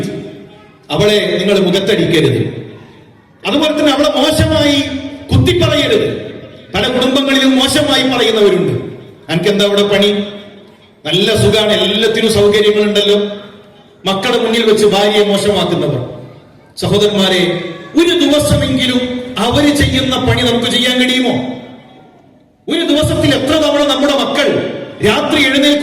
അവളെ നിങ്ങൾ മുഖത്തടിക്കരുത്. അതുപോലെ തന്നെ അവളെ മോശമായി കുത്തിപ്പറയരുത്. പല കുടുംബങ്ങളിലും മോശമായി പറയുന്നവരുണ്ട്. എനിക്കെന്താ അവിടെ പണി, നല്ല സുഖാണ്, എല്ലാത്തിനും സൗകര്യങ്ങളുണ്ടല്ലോ. മക്കളുടെ മുന്നിൽ വെച്ച് ഭാര്യയെ മോശമാക്കുന്നവർ. സഹോദരന്മാരെ, ഒരു ദിവസമെങ്കിലും അവര് ചെയ്യുന്ന പണി നമുക്ക് ചെയ്യാൻ കഴിയുമോ? ഒരു ദിവസത്തിൽ എത്ര തവണ നമ്മുടെ മക്കൾ രാത്രി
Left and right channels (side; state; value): both; identical; correlation 1.00